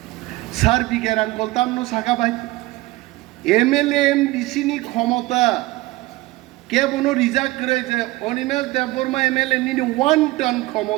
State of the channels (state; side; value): quieter; left; 19.6 dB